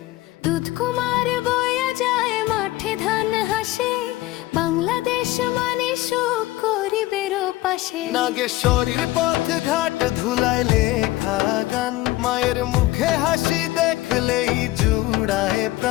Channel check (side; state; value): right; quieter; 17.7 dB